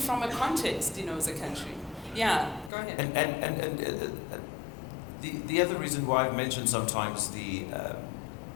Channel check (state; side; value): drops out; right; at 2.7 s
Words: a context, as a country. Yeah, go ahead. And the other reason why I've mentioned sometimes